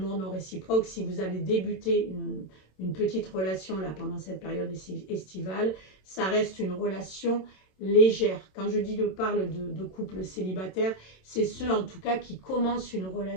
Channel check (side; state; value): right; late; 27 ms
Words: non réciproque, si vous avez débuté une petite relation là pendant cette période estivale, ça reste une relation légère. Quand je dis parle de couple célibataire, c'est ceux en tout cas qui commencent une